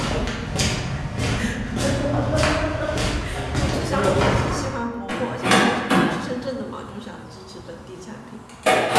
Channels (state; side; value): identical; both; correlation 1.00